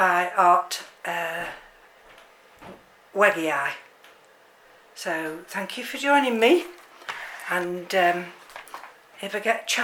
hartwegeii. So thank you for joining me, and if I get a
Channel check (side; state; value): both; identical; correlation 1.00